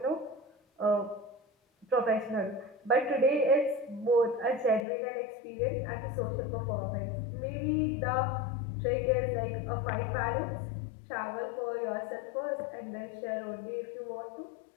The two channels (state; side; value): drops out; right; at 4.9 s